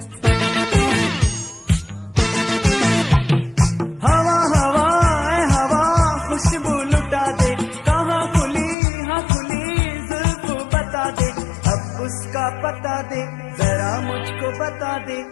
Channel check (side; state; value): right; drops out; at 8.8 s